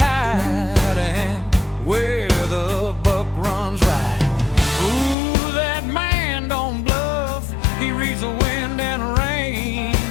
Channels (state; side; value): drops out; right; at 5.2 s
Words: and where the buck runs right. Ooh, that man don't bluff, he reads the wind and rain.